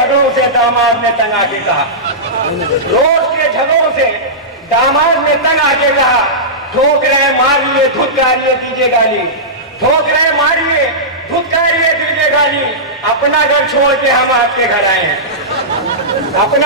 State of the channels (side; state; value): both; normal; correlation -0.15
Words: से दामाद ने तंग आके कहा, रोज के झगड़ों से दामाद ने तंग आके कहा, ठोक रहे मारिए धुतकारिए दीजिए गाली, ठोक रहे मारिए धुतकारिए दीजिए गाली, अपना घर छोड़ के हम आपके घर आए हैं,